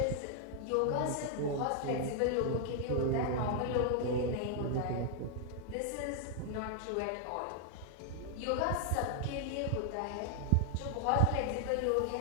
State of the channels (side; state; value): both; different; correlation 0.00